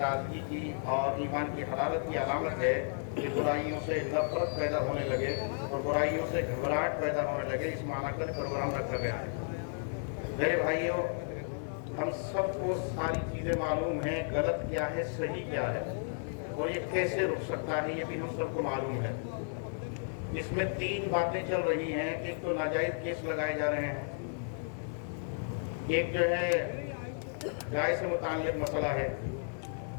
की और ईमान की हरारत की अलामत है कि बुराइयों से नफरत पैदा होने लगे और बुराइयों से घबराहट पैदा होने लगे। इस माना का प्रोग्राम रखा गया है। मेरे भाइयों, हम सबको सारी चीज़ें मालूम हैं, गलत क्या है सही क्या है और ये कैसे रुक सकता है, ये भी हम सबको मालूम है। इसमें तीन बातें चल रही हैं। एक तो नाजायज केस लगाए जा रहे हैं, एक जो है गाय से मुताल्लिक मसला है,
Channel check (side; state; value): right; silent; 56 dB below the other